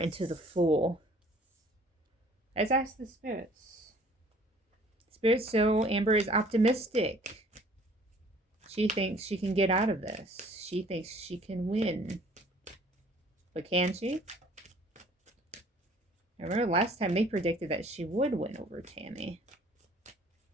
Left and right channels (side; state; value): both; normal; correlation 0.55